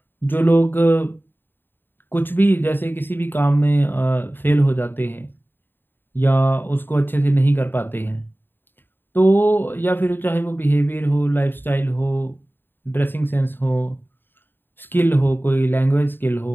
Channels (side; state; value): right; late; 0.096 ms